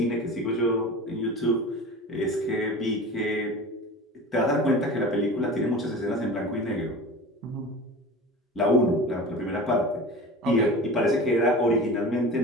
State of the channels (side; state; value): both; normal; correlation 0.35